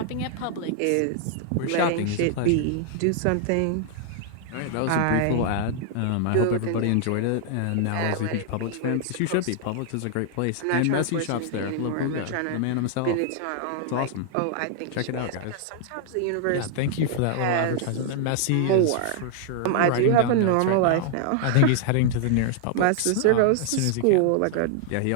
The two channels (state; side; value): different; both; correlation -0.01